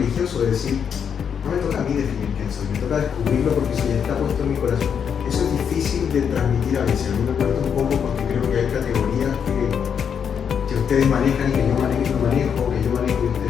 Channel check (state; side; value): quieter; right; 7.4 dB